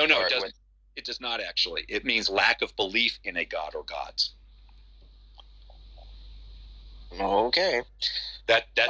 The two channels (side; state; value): both; identical; correlation 1.00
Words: it doesn't. It does not actually. It means lack of belief in a god or gods. Okay. That's